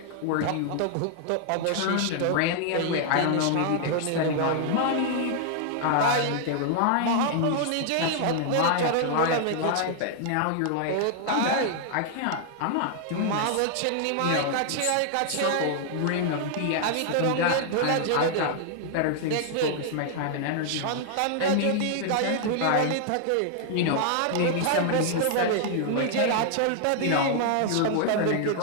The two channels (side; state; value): both; different; correlation 0.00